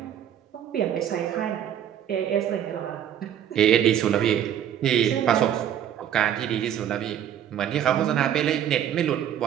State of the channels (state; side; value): quieter; left; 10.1 dB